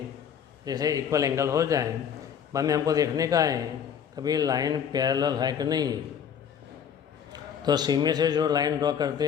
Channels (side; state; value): right; quieter; 8.1 dB